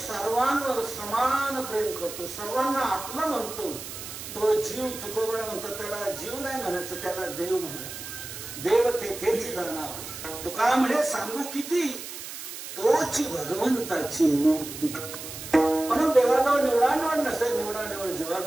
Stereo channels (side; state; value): right; noise; hiss, 10 dB below the sound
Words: समान प्रेम करतो, सर्वांना आपलं म्हणतो, तो जीव तुकोबरा म्हणतो. त्याला जीव नाही म्हणायचं, त्याला देव म्हणायचं. देव तेथेच जाणार. तुका म्हणे सांगू किती, तोची भगवंताची मुक्ती. म्हणून देवाजवळ निवडा निवड नसते, निवडा निवड